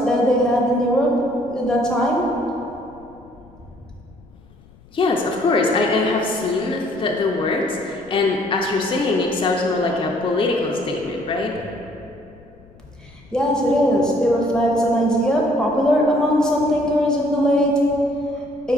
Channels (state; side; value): noise; left; rumble, 26 dB below the sound